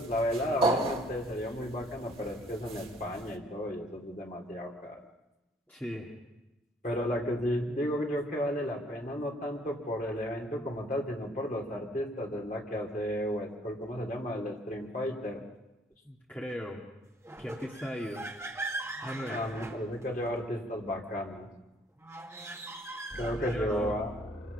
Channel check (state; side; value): normal; both; correlation 0.61